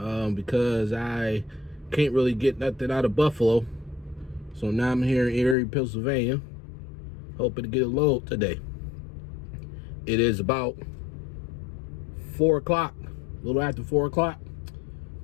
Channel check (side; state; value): right; drops out; at 5.6 s